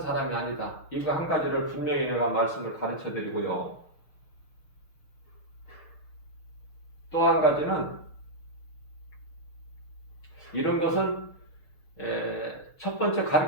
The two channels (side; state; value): right; late; 6.6 ms